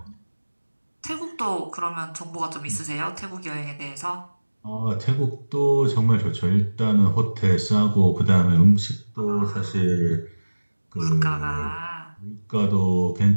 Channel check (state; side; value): inverted; both; correlation -1.00